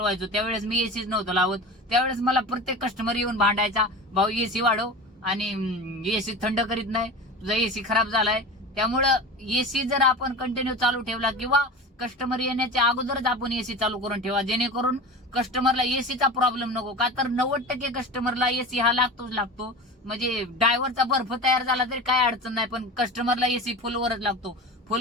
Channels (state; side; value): normal; both; correlation 0.32